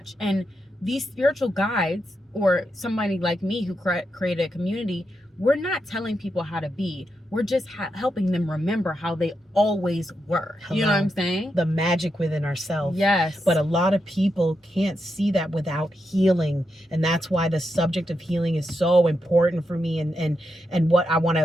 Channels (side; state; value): both; normal; correlation 0.85